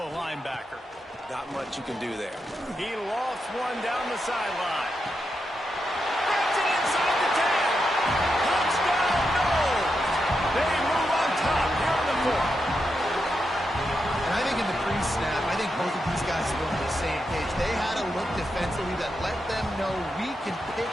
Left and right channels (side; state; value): both; normal; correlation 0.85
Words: linebacker. Not much you can do there. He lofts one down the sideline. Gets it inside the 10. Touchdown, no! They move on top here in the fourth. And I think in the pre-snap, I think both of these guys were on the same page. They had a look defensively that let them know we can